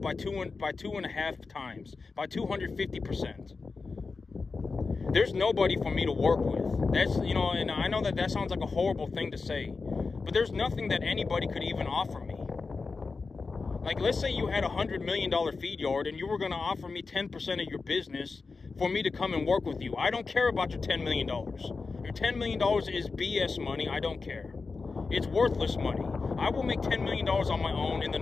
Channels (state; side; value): quieter; right; 4.3 dB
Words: by 2.5 times, by 250%. There's nobody for me to work with. That's, you know, and I know that sounds like a horrible thing to say, but there's nothing that anybody could even offer me. Like, let's say you had a $100 million feed yard and you were going to offer me 10% of your business for me to come and work with you. I don't care about your $10 million. Your $10 million is BS money. I don't care. It's worthless money. I will make $10 million on my own in the